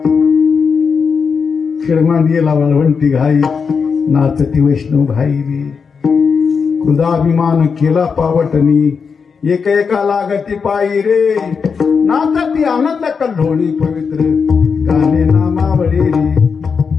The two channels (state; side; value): quieter; right; 5.7 dB